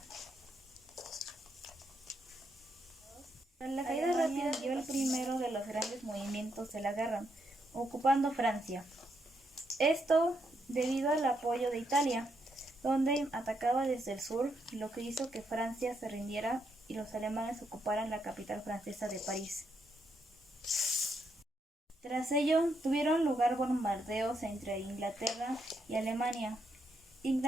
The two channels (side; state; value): both; normal; correlation 0.78